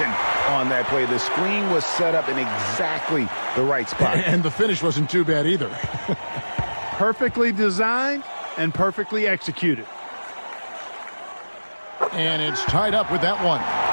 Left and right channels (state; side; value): inverted; both; correlation -1.00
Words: on that play? The screen was set up in exactly the right spot. And the finish wasn't too bad either. Perfectly designed and perfectly executed. And it's tied up with that one.